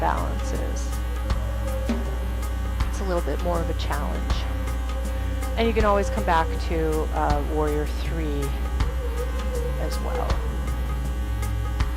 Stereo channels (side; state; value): both; identical; correlation 1.00